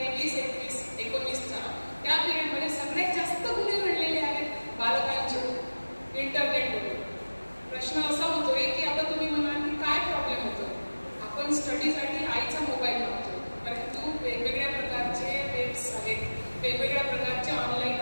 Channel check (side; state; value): both; inverted; correlation -1.00